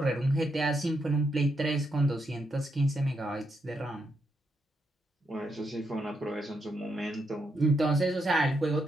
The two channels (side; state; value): both; normal; correlation 0.80